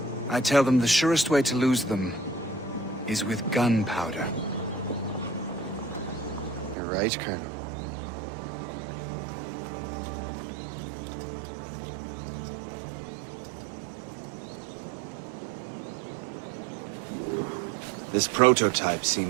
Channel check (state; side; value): drops out; left; at 6.8 s